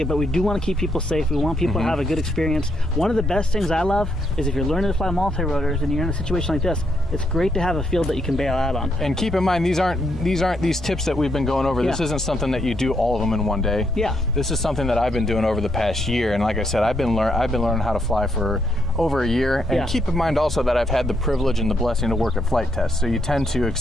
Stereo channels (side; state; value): both; normal; correlation 0.77